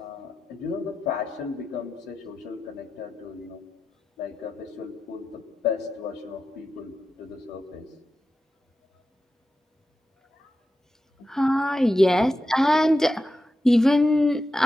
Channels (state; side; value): normal; both; correlation 0.90